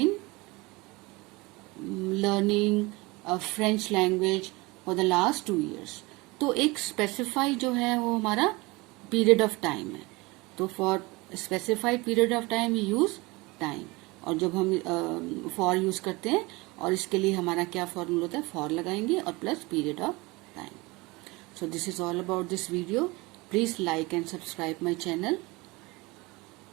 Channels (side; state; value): left; quieter; 23.7 dB